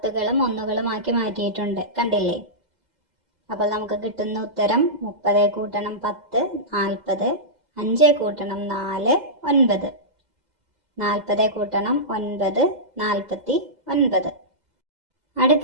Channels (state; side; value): late; left; 2.1 ms